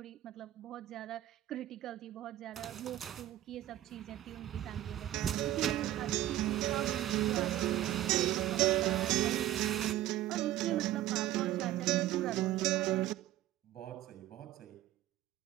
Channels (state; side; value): quieter; left; 13.9 dB